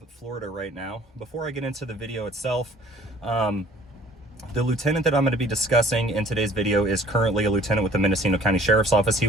Florida right now. Before I get into the video itself, the lieutenant that I'm going to be discussing in today's video is currently a lieutenant with the Mendocino County Sheriff's Office. He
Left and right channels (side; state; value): both; normal; correlation 0.53